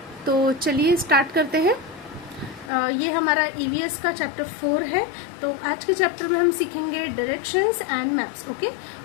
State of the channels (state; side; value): drops out; right; at 2.7 s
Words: तो चलिए स्टार्ट करते हैं। ये हमारा ईवीएस का चैप्टर 4 है। तो आज के चैप्टर में हम सीखेंगे डायरेक्शंस एंड मैप्स। ओके,